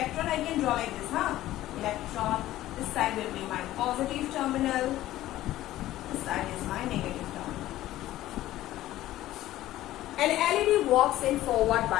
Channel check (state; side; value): quieter; right; 14.9 dB